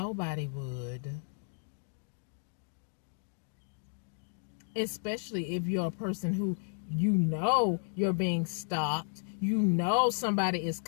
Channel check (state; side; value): silent; right; digital silence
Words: would. Especially if you're a person who you're being stalked. Somebody is